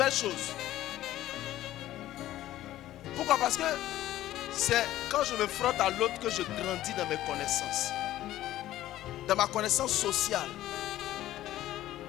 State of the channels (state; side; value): quieter; right; 14.2 dB